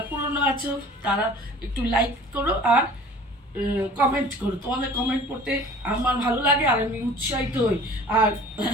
পুরনো আছো তারা একটু লাইক করো আর কমেন্ট করো, তোমাদের কমেন্ট পড়তে আমার ভালো লাগে আর আমি উৎসাহিত হই। আর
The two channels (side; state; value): both; normal; correlation 0.46